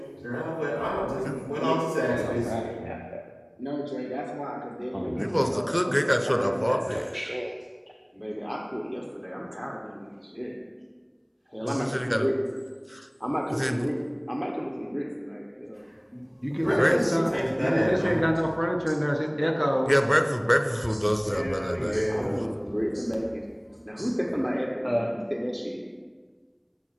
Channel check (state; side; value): identical; both; correlation 1.00